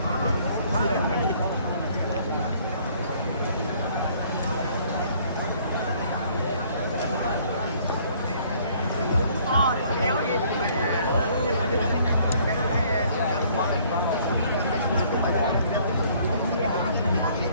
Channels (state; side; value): inverted; both; correlation -0.60